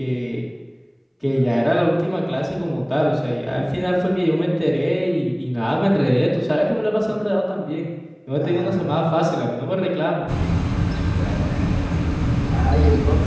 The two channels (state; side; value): identical; both; correlation 1.00